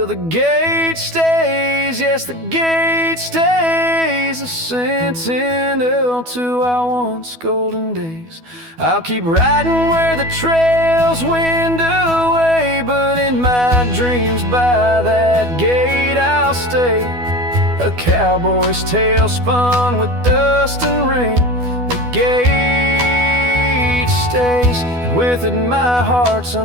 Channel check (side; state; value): left; late; 12 ms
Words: the gate stays, yes, the gate stays, a sentinel to our once golden days. I'll keep riding where the trails wind away, but in my dreams by that gate I'll stay. A cowboy's tale spun with dust and rain. The gate stays, and with it my heart's